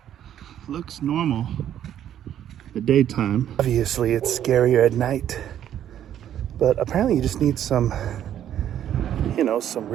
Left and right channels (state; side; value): quieter; left; 10.7 dB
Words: looks normal the daytime. Obviously it's scarier at night, but apparently you just need some some